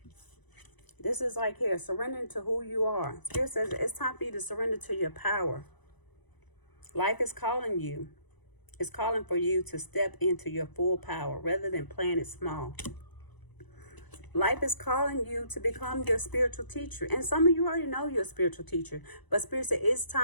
This is like here, surrendering to who you are. Spirit says it's time for you to surrender to your power. Life is calling you. It's calling for you to step into your full power rather than playing it small. Life is calling you to become your spiritual teacher. And some of you already know you're a spiritual teacher. But Spirit said it's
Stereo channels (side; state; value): right; late; 1.0 ms